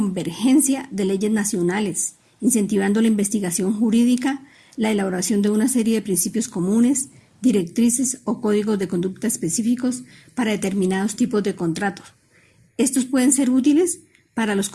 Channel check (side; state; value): both; identical; correlation 1.00